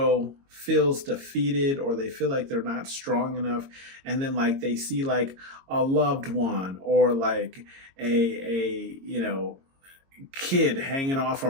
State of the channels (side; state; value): left; late; 22 ms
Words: feels defeated, or they feel like they're not strong enough, and then like they see like a loved one, or like a kid hanging off a